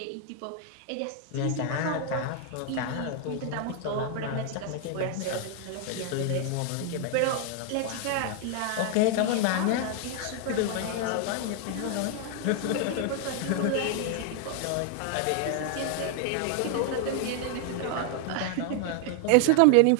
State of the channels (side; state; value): both; different; correlation 0.00